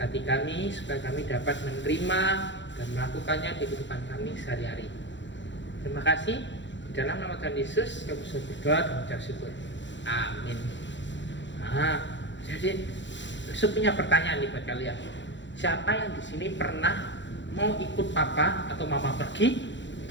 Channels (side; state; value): right; late; 0.53 ms